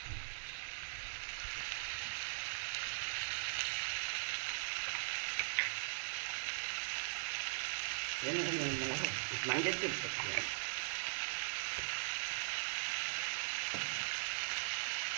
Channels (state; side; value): silent; left; digital silence